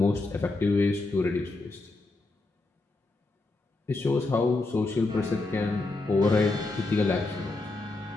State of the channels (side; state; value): right; quieter; 3.2 dB